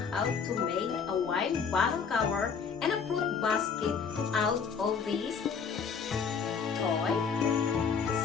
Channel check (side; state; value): right; quieter; 6.1 dB